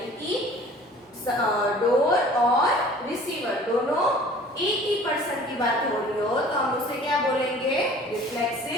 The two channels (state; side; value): normal; both; correlation 0.48